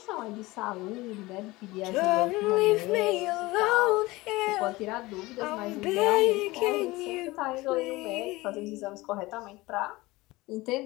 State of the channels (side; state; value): right; quieter; 20.7 dB